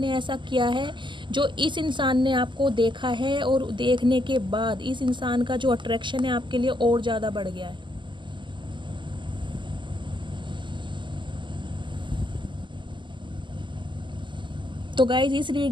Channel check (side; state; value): left; late; 0.23 ms